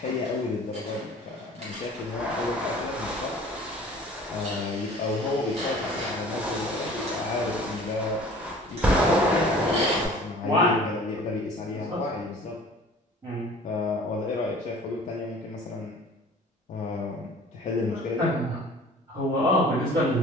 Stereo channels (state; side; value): normal; both; correlation 0.47